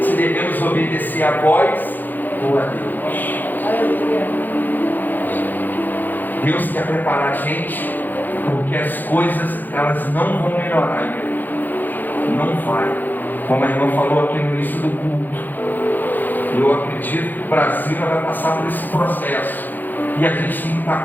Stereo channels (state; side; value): late; right; 0.086 ms